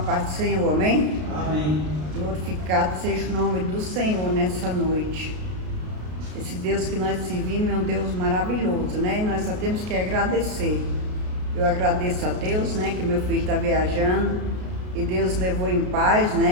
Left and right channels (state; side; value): late; left; 33 ms